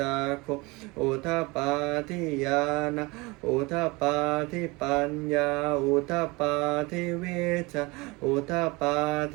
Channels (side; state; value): left; quieter; 24.7 dB